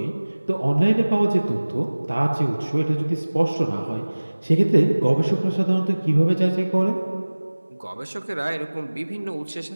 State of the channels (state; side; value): inverted; both; correlation -1.00